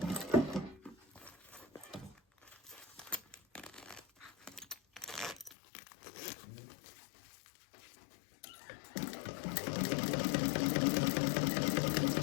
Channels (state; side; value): drops out; right; at 5.6 s